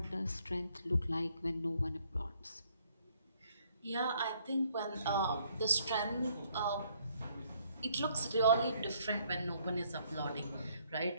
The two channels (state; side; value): inverted; both; correlation -0.68